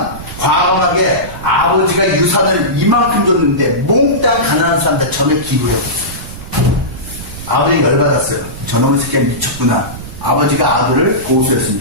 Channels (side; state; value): right; noise; rumble, 13 dB below the sound